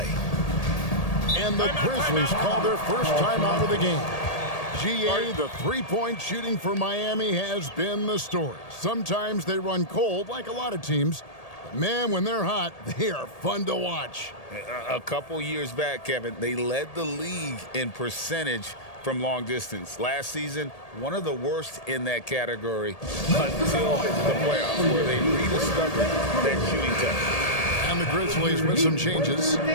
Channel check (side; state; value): right; late; 1.8 ms